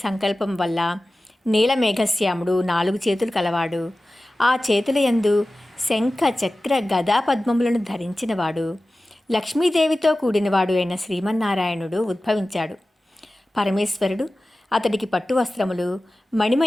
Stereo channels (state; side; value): normal; both; correlation 0.96